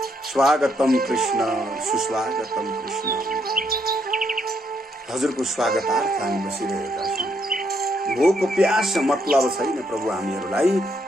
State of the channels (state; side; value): normal; both; correlation 0.74